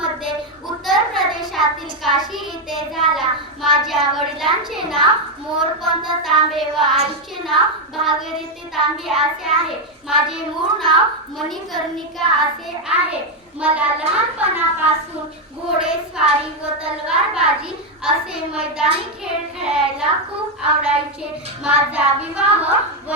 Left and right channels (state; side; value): normal; both; correlation 0.04